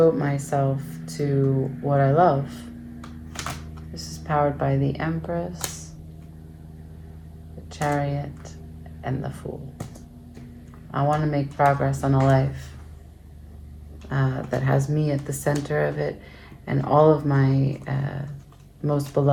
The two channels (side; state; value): both; identical; correlation 1.00